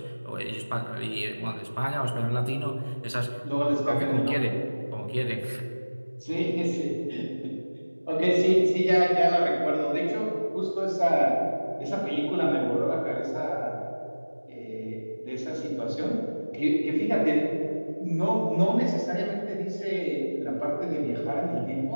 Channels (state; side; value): inverted; both; correlation -1.00